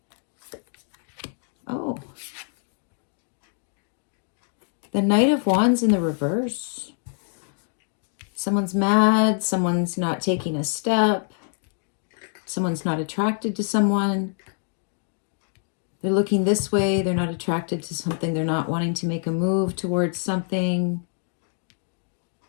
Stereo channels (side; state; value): right; silent; 61 dB below the other